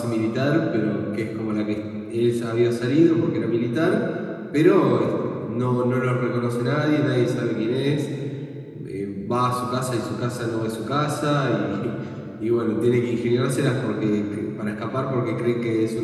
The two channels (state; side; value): identical; both; correlation 1.00